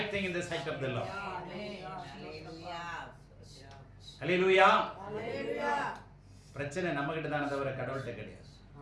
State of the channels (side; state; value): both; identical; correlation 1.00